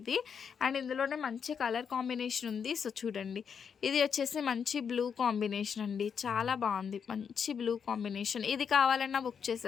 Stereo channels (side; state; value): right; quieter; 6.9 dB